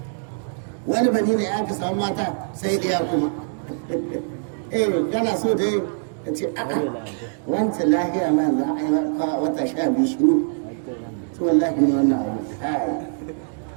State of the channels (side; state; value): left; silent; digital silence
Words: wani bani ne aka samu mata sai ɗaya kuma kana so dai ka ce a'a wancan lahiya ma za a yi wata 12 shiru to wallahi ne wannan abu